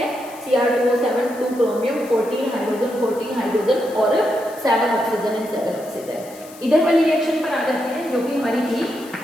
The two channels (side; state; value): left; noise; hiss, 20 dB below the sound